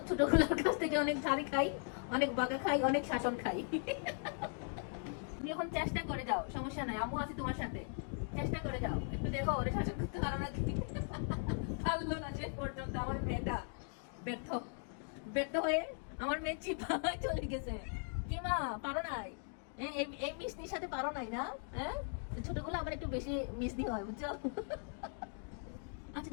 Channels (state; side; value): silent; right; 52 dB below the other